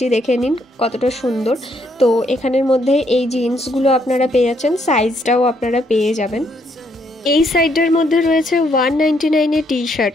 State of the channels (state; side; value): normal; both; correlation 0.72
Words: দেখে নিন কতটা সুন্দর। তো এখানের মধ্যে এই জিন্সগুলো আপনারা পেয়ে যাচ্ছেন, সাইজটাও আপনারা পেয়ে যাবেন। এই সাইডটার মধ্যে রয়েছে 199 টি শার্ট,